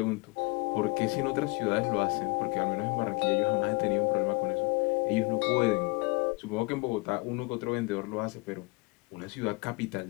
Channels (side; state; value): right; quieter; 27.5 dB